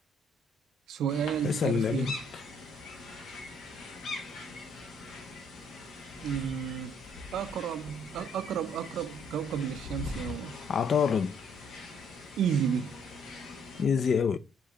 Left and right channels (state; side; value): normal; both; correlation 0.64